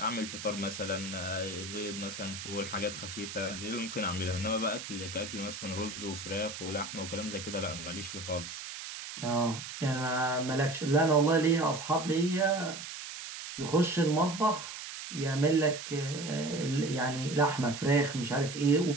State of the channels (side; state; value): right; noise; hiss, 9 dB below the sound